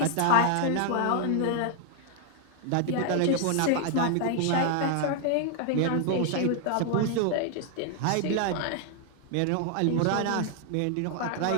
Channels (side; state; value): both; different; correlation 0.00